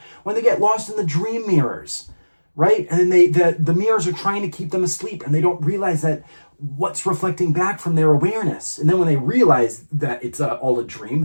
when they get lost in the dream mirrors, right? And then the mirrors are trying to keep them asleep, and they don't realize that what's reflecting back from their awareness. And then when they realize that it's all a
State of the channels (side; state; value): both; inverted; correlation -1.00